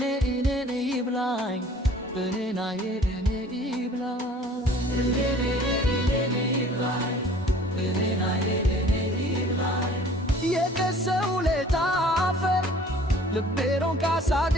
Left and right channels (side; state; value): both; normal; correlation 0.51